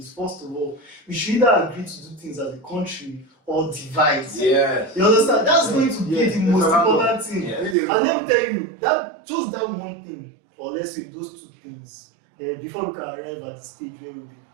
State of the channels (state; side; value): drops out; left; at 7.8 s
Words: first of all, we should either agree to do things as a country or divide. Yeah. You understand? That's going to be Yeah, the most it's a important thing. Yeah. And let me tell you, that just that one thing, or let's say those two things, before we can arrive at the stage where we'll be